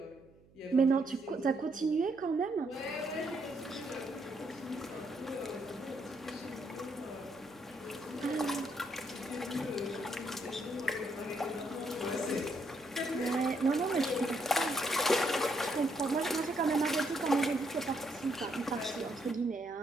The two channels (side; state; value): right; noise; hum, 27 dB below the sound